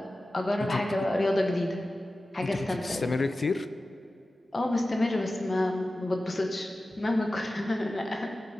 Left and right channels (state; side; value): normal; both; correlation 0.95